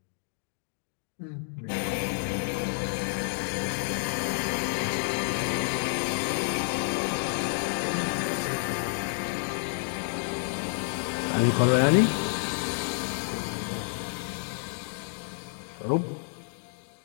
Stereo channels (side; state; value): right; silent; digital silence